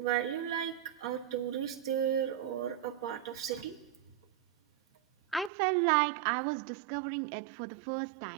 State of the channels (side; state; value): left; drops out; at 5.5 s